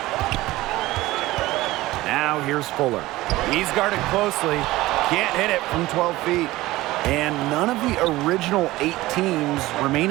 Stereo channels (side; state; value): left; quieter; 18.0 dB